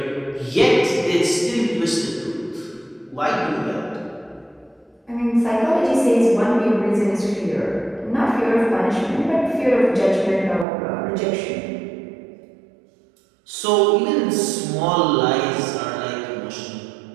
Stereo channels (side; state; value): left; drops out; at 10.7 s